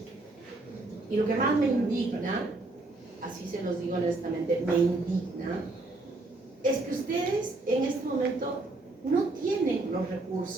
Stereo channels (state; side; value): quieter; left; 3.0 dB